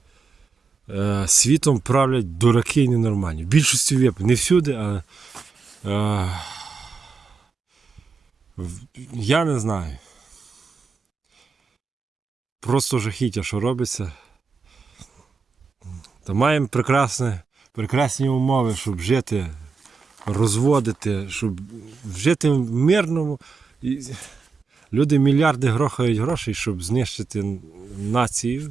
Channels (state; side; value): quieter; left; 4.9 dB